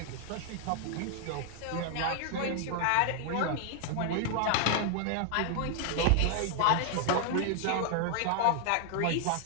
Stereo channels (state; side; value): different; both; correlation 0.00